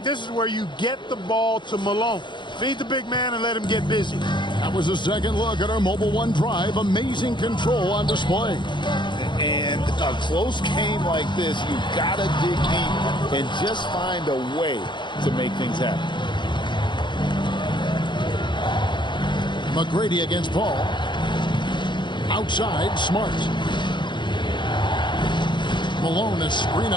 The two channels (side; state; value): right; late; 0.23 ms